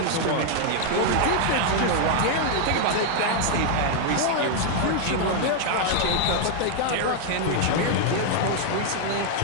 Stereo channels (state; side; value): different; both; correlation 0.00